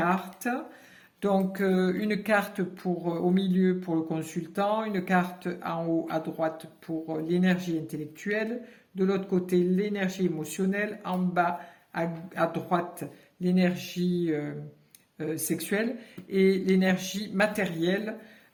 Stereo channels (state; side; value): identical; both; correlation 1.00